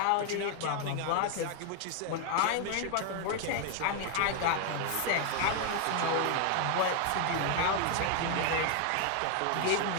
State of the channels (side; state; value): both; different; correlation 0.01